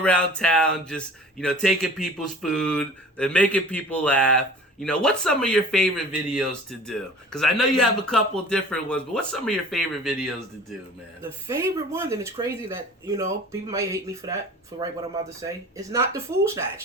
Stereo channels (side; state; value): both; normal; correlation 0.44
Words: town just, you know, taking people's food and making people laugh. You know, what's some of your favorite videos to do? Because I know you have a couple different ones, but what's some of your favorite videos to do, man? The favorite one, and it's crazy that, you know, people might hate me for that, for what I'm about to say. It's not the food